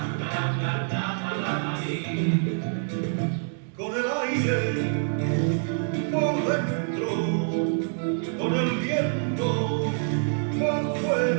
la morí, con el aire por dentro, con el viento por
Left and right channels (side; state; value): left; silent; 61 dB below the other